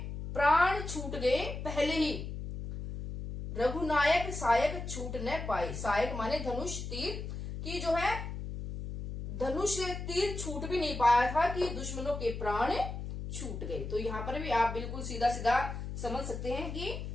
प्राण छूट गए पहले ही, रघुनायक सायक छूट न पाए। सायक माने धनुष तीर, की जो है धनुष तीर छूट भी नहीं पाया था कि दुश्मनों के प्राण छूट गए। तो यहाँ पर भी आप बिल्कुल सीधा सीधा समझ सकते हैं कि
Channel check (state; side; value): noise; left; hum, 6 dB below the sound